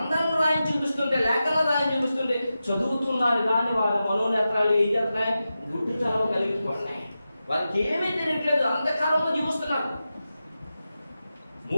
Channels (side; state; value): both; inverted; correlation -0.92